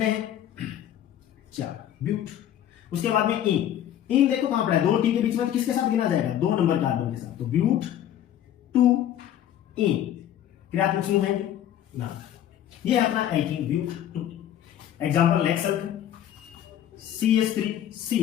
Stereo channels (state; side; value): quieter; right; 11.1 dB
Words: हैं? 4, ब्यूट। उसके बाद में इन देखो कहां पड़ा है? 2 टी के बीच में, तो किसके साथ गिना जाएगा? 2 नंबर कार्बन के साथ, तो ब्यूट 2 इन क्रियात्मक समूह है ना। ये है अपना alkene but 2। Example next CH3 C